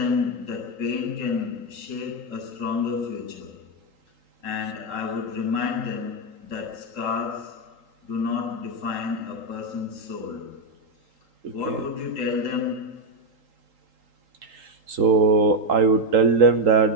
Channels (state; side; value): late; left; 3.8 ms